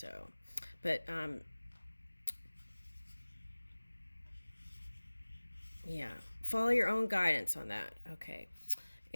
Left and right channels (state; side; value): inverted; both; correlation -1.00